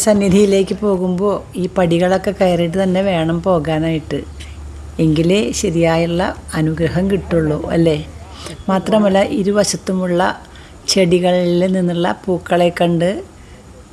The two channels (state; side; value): identical; both; correlation 1.00